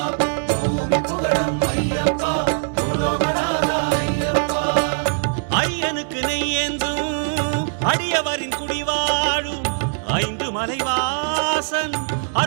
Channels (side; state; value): left; silent; digital silence